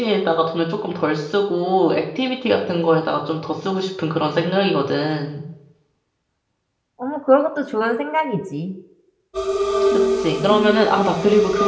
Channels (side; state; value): both; identical; correlation 1.00